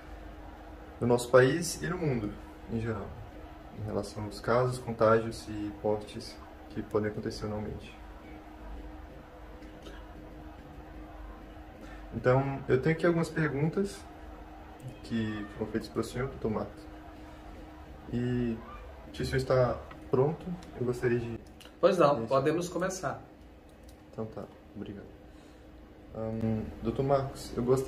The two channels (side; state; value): both; identical; correlation 1.00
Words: no nosso país e no mundo em geral, em relação aos casos, contágios e mortes que podem acontecer anualmente. Então, eu tenho aqui algumas perguntas que foram feitas para o senhor, Dr. Marcos. E se o senhor está pronto, eu gostaria de... Pois não, podemos começar. Então tá, obrigado. Dr. Marcos, eu